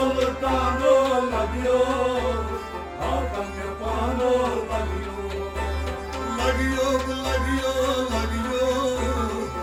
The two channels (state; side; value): identical; both; correlation 1.00